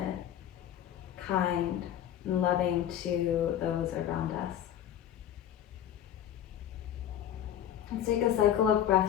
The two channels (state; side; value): quieter; right; 10.5 dB